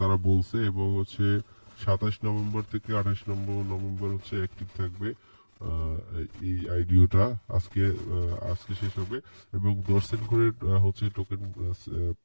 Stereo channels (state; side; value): inverted; both; correlation -1.00